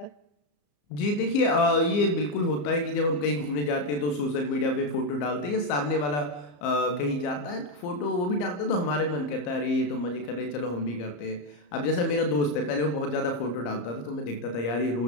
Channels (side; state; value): right; late; 34 ms